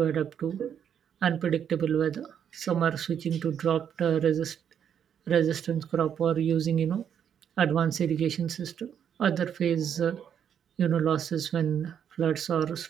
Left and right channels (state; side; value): quieter; left; 8.6 dB